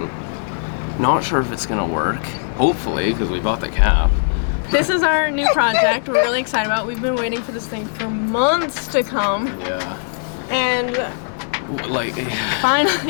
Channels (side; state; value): right; silent; digital silence